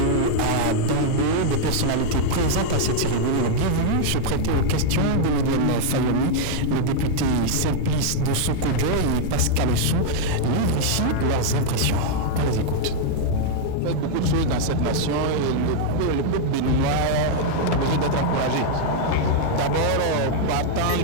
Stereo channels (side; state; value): both; different; correlation -0.01